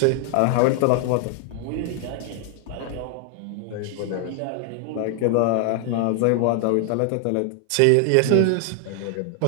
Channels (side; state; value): both; different; correlation 0.00